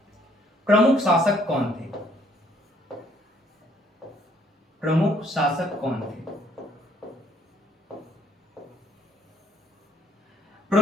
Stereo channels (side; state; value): both; normal; correlation 0.66